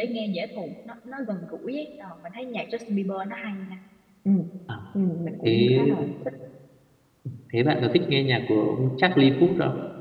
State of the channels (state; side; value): identical; both; correlation 1.00